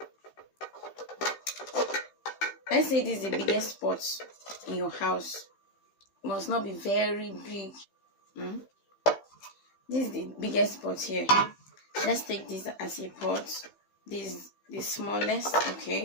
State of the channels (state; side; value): late; right; 15 ms